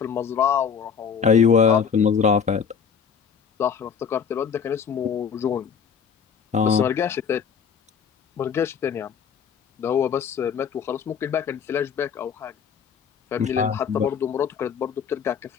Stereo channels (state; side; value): quieter; right; 6.9 dB